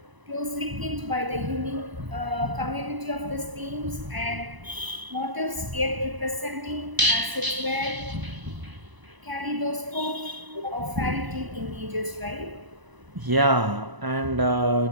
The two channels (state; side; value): late; left; 1.0 ms